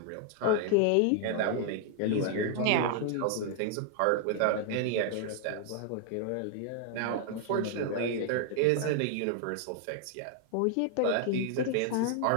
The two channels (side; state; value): both; different; correlation 0.00